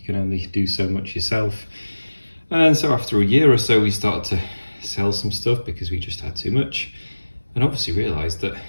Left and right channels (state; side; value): inverted; both; correlation -1.00